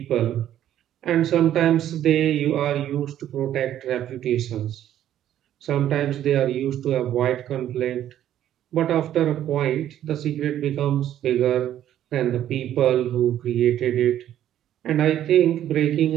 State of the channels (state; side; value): quieter; left; 11.5 dB